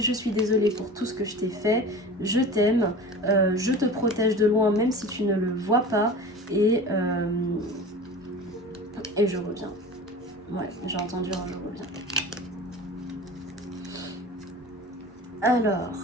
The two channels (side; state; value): both; normal; correlation 0.36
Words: je suis désolée pour tout ce que je t'ai fait, je t'aime, je te protège de loin même si tu ne le vois pas et je reviens. Ouais, j'ai entendu un je reviens. Alors,